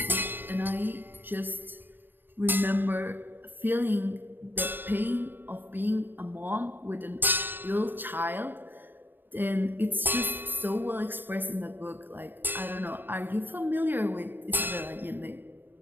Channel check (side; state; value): left; late; 0.094 ms